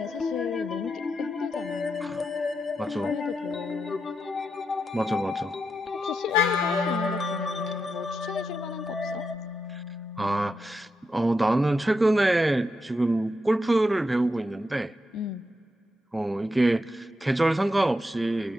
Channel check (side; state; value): both; normal; correlation 0.85